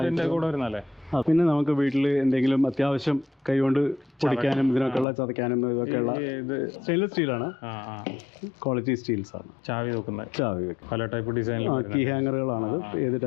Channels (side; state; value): right; drops out; at 5.1 s